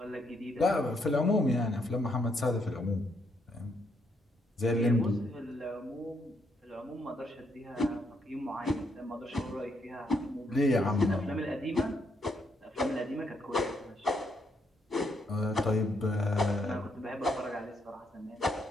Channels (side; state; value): both; normal; correlation 0.75